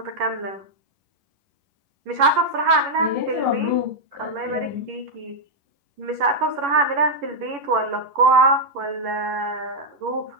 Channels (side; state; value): left; late; 11 ms